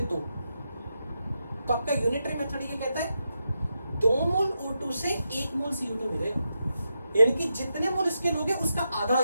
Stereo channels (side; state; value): both; inverted; correlation -0.86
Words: तो आपका यूनिटरी मेथड ये कहता है 2 मोल O2 से 1 मोल CO2 मिलेगा, यानी कि जितने मोल इसके लोगे उसका आधा